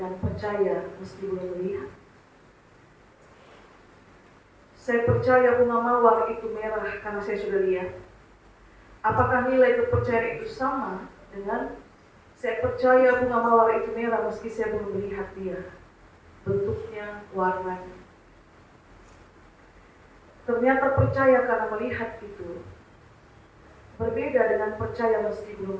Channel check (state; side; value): identical; both; correlation 1.00